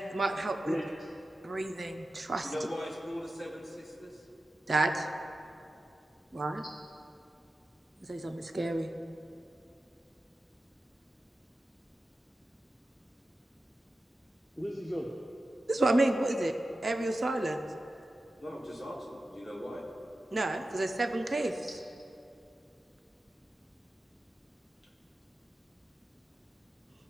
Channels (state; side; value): normal; both; correlation 0.94